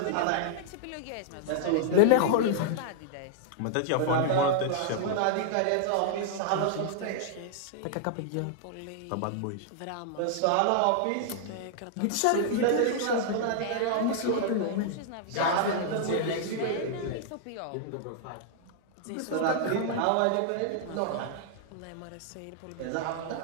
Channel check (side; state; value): both; different; correlation -0.01